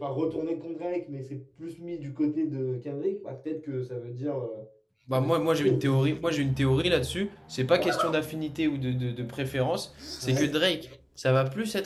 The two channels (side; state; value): both; identical; correlation 1.00